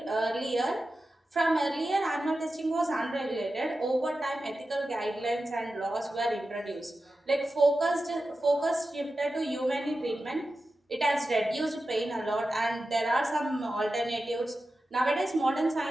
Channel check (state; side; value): normal; both; correlation 0.92